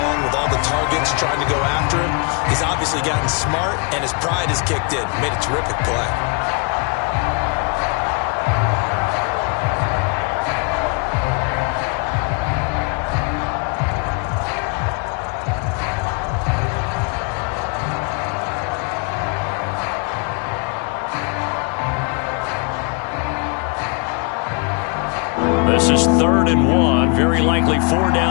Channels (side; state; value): right; quieter; 33.8 dB